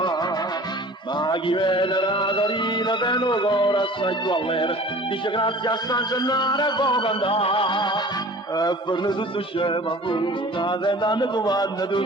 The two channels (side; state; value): both; normal; correlation 0.44